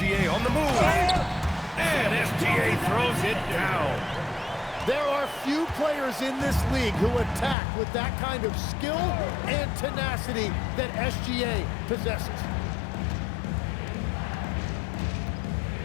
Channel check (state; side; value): drops out; right; at 7.6 s